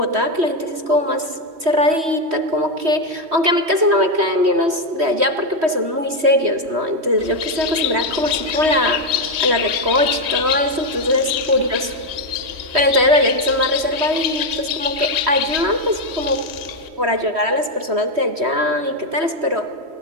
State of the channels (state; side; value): late; left; 3.1 ms